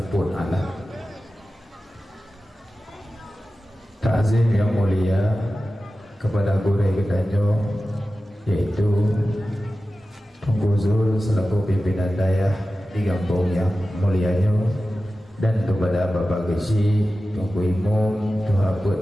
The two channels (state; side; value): normal; both; correlation 0.94